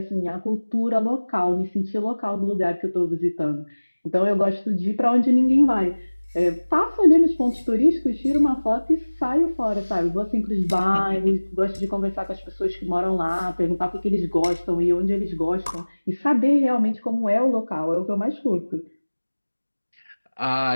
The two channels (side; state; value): both; inverted; correlation -1.00